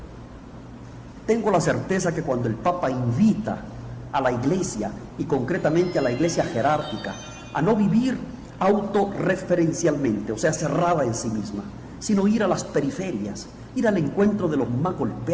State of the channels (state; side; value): identical; both; correlation 1.00